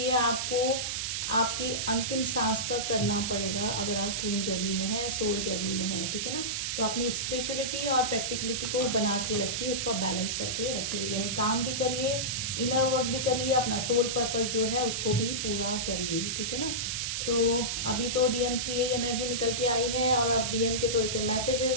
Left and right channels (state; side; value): noise; right; hiss, 1 dB below the sound